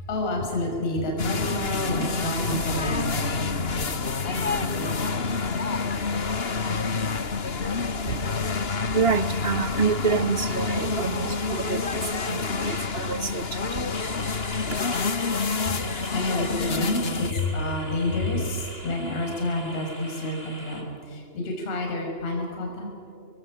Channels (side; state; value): right; late; 2.9 ms